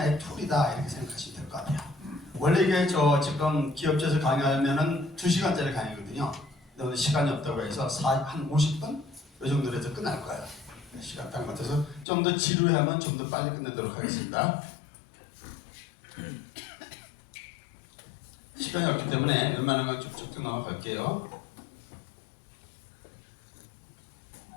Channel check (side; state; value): right; drops out; at 12.1 s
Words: 툴이다 이렇게 생각하시면 될 것 같아요. 원래 이게 저 지금 기업체에서 강의하면은 2시간짜리 강의거든요. 근데 오늘 시간이 없다고 해서 한 50분? 이 정도로 해서 끝날 거예요. 시간 딱 맞춰서 좀 더 지루하면 좀 더 빨리 끝내도록 하겠습니다. 시간이 없기 때문에 웬만한 건 쭉쭉 넘어갈게요.